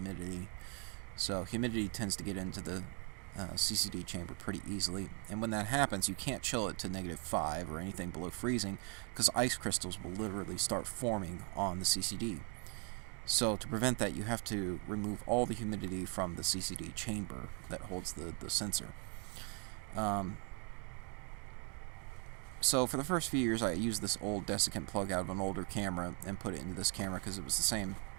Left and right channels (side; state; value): left; quieter; 37.7 dB